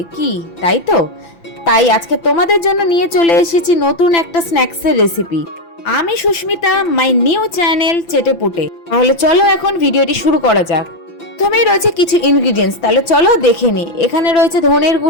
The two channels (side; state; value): right; late; 5.9 ms